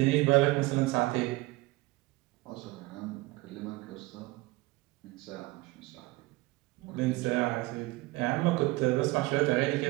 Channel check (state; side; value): quieter; left; 21.1 dB